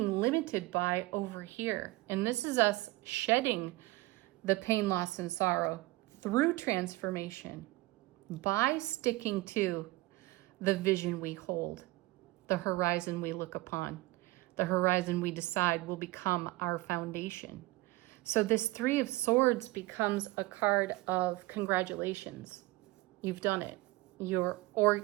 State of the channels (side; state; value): left; quieter; 20.1 dB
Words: limited by over here. And this is us shedding the pain, loss, and sorrow through transformation by sticking to the vision we hold, the horizon we look upon. The horizon we decide will become our foundation. So this 3 of Swords becomes a card of congratulations. You've done it. You're